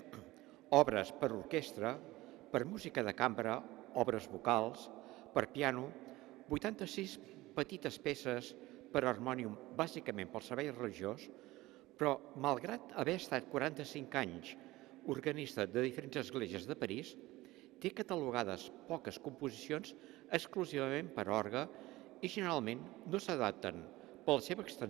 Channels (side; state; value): left; quieter; 18.7 dB